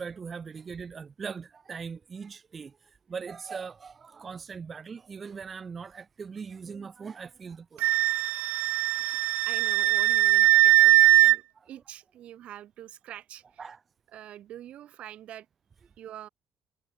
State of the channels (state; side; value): quieter; left; 16.4 dB